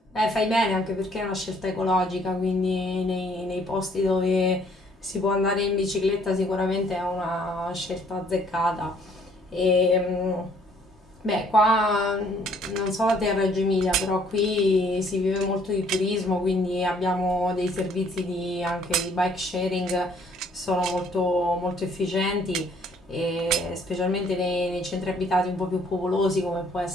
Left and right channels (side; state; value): both; normal; correlation 0.62